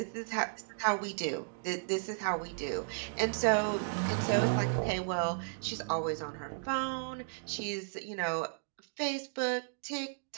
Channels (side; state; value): left; silent; digital silence